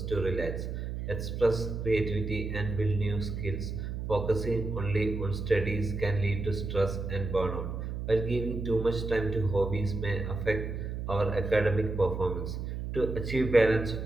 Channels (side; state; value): right; noise; hum, 5 dB below the sound